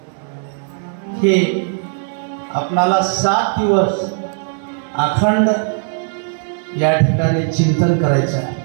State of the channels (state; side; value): silent; left; digital silence